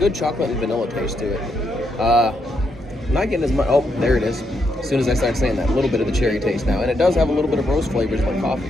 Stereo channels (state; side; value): normal; both; correlation 0.79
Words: chocolate and vanilla taste to it. I'm not getting as much. Oh, there it is. As soon as I start saying that, a little bit of the cherry taste now, and it does have a little bit of roast flavors like coffee.